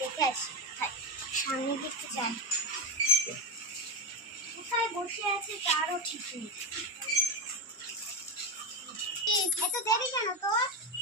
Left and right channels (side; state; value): both; normal; correlation 0.11